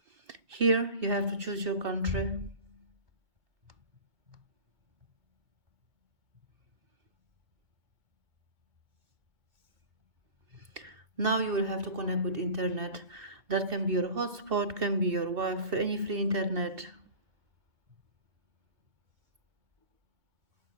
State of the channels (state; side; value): late; left; 2.2 ms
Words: Here you have to choose your country. Now you will have to connect with internet. That can be your hotspot, can be your Wi-Fi, any free internet.